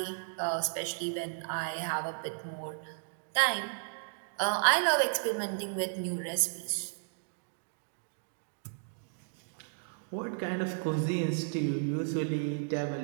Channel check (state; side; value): silent; left; digital silence